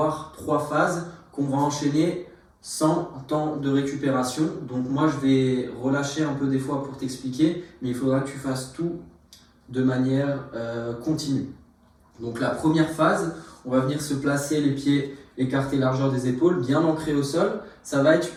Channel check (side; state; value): both; identical; correlation 1.00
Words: 3 phases qu'on va enchaîner sans temps de récupération. Donc moi, je vais relâcher un peu des fois pour t'expliquer, mais il faudra que tu fasses tout de manière continue. Donc la première phase, on va venir se placer les pieds écartés largeur des épaules, bien ancrés au sol. Ça va être